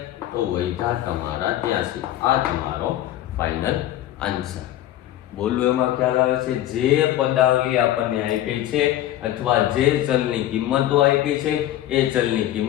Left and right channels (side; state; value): right; quieter; 13.3 dB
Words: તો વૈધા તમારા 83. આ તમારો ફાઇનલ આન્સર. બોલું એમાં ખ્યાલ આવે છે? જે પદાવલી આપણને આપી છે અથવા જે ચલની કિંમતો આપી છે એ ચલની